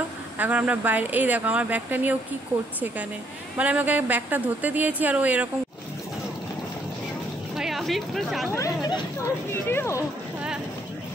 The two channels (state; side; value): normal; both; correlation 0.68